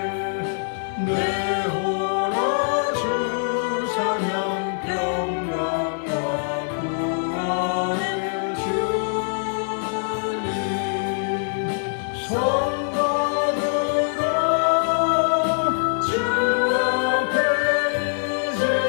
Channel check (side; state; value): right; silent; 60 dB below the other